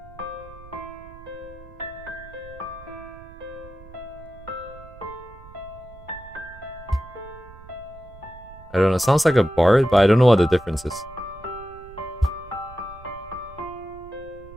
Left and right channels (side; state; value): right; noise; rumble, 19 dB below the sound